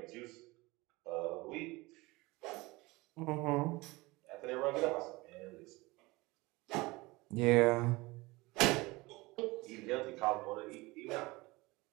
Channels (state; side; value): quieter; left; 22.4 dB